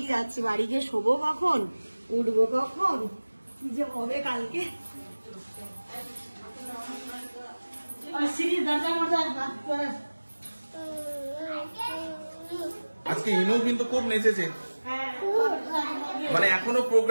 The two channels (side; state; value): both; inverted; correlation -1.00